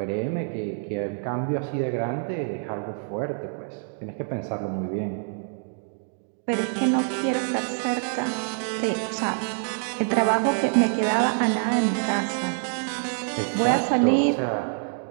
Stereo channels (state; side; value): silent; left; 56 dB below the other